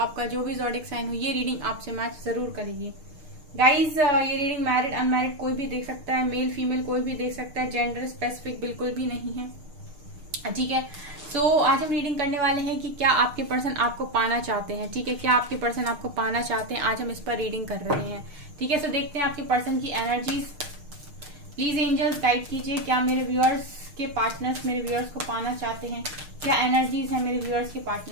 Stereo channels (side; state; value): left; late; 6.5 ms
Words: जो भी ज़ोडिएक साइन हो ये रीडिंग आपसे मैच जरूर करेगी। गाइज, ये रीडिंग मैरिड अनमैरिड कोई भी देख सकता है, मेल फीमेल कोई भी देख सकता है, जेंडर स्पेसिफिक बिल्कुल भी नहीं है। ठीक है, सो आज हम रीडिंग करने वाले हैं कि क्या आपके पर्सन आपको पाना चाहते हैं। ठीक है, क्या आपके पर्सन आपको पाना चाहते हैं, आज हम इस पर रीडिंग कर रहे हैं। ठीक है, सो देखते हैं आपके पर्सन की एनर्जीज। प्लीज एंजल्स गाइड कीजिए, क्या मेरे व्यूअर्स के पार्टनर्स मेरे व्यूअर्स को पाना चाहते हैं, क्या एनर्जीज है मेरे व्यूअर्स के